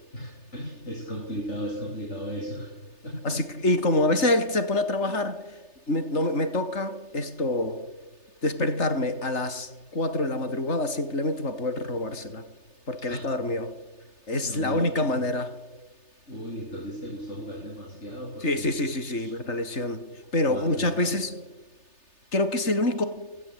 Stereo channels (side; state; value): right; late; 3.3 ms